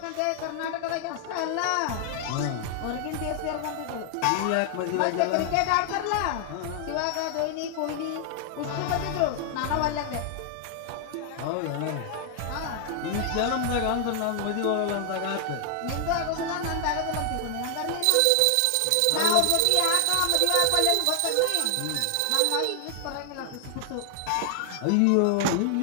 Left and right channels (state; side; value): different; both; correlation 0.00